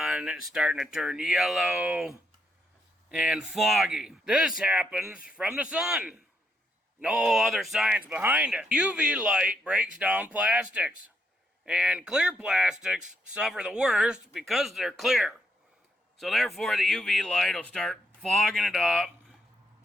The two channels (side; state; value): both; normal; correlation 0.77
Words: It's starting to turn yellow and foggy. This happens from the sun. No other science behind it. UV light breaks down plastics. And clear plastics suffer the worst because they're clear. So therefore the UV light will start fogging it up,